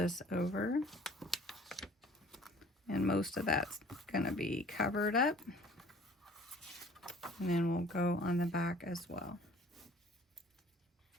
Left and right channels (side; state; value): both; normal; correlation 0.52